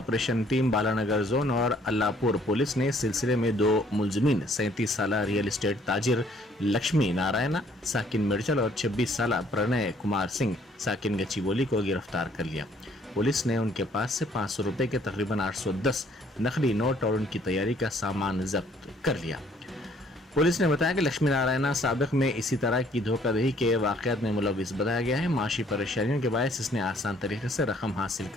team Balanagar zone और अल्लाहपुर पुलिस ने सिलसिले में 2 मुलजमीन 37 साल रियल एस्टेट ताजिर लक्ष्मी नारायण साकिन मिर्चल और 26 साल प्रणय कुमार सिंह साकिन गच्चीबोली को गिरफ्तार कर लिया। पुलिस ने उनके पास से 500 रुपए के तकरीबन 810 नकली नोट और उनकी तैयारी का सामान जब्त कर लिया। पुलिस ने बताया कि लक्ष्मी नारायण साबिक में इसी तरह की धोखाधड़ी के वाकयात में मुलविस बताया गया है। माशी परेशानियों के बायस इसने आसान तरीके से रकम हासिल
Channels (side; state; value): both; normal; correlation 0.62